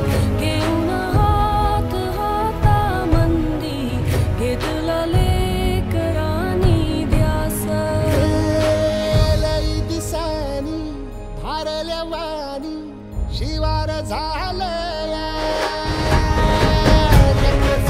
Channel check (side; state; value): both; identical; correlation 1.00